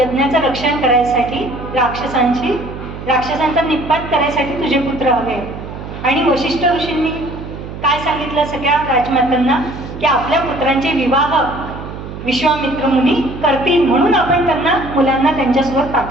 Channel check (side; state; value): right; noise; hum, 10 dB below the sound